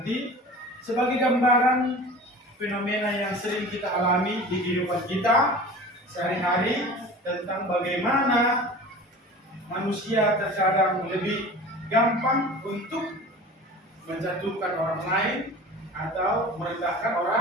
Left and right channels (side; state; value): both; normal; correlation 0.38